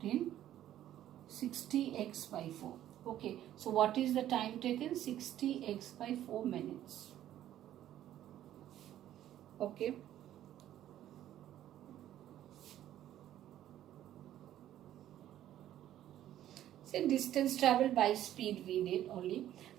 in 60x by 4. Okay, so what is the time taken? 60x by 4 minutes. Okay. So distance traveled by speed we did only.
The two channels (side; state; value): left; quieter; 12.3 dB